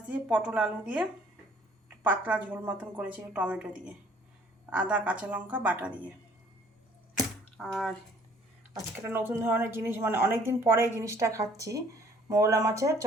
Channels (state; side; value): normal; both; correlation 0.58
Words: দিয়ে পটল আলু দিয়ে পাতলা ঝোল মতন করেছি টমেটো দিয়ে, আদা কাঁচা লঙ্কা বাটা দিয়ে। আর আজকে একটা নতুন ধরনের জিনিস, মানে অনেক দিন পরে এই জিনিসটা খাচ্ছি, মৌলা মাছের